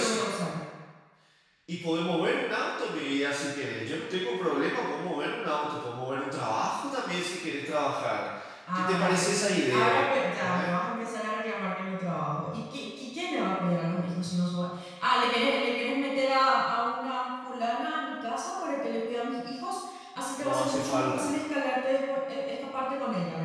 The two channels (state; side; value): identical; both; correlation 1.00